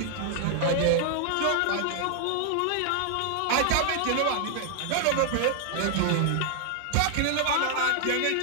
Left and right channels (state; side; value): different; both; correlation 0.00